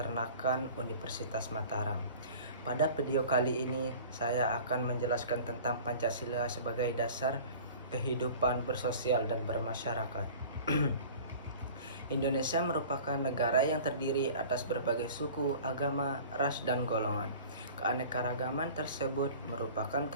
Universitas Mataram. Pada video kali ini saya akan menjelaskan tentang Pancasila sebagai dasar kehidupan bersosial dan bermasyarakat. Indonesia merupakan negara yang terdiri atas berbagai suku, agama, ras, dan golongan. Keanekaragaman tersebut merupakan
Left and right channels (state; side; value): inverted; both; correlation -0.42